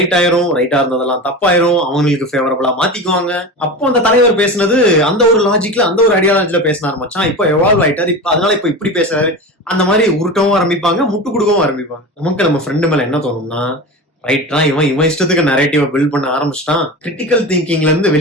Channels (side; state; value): both; normal; correlation 0.28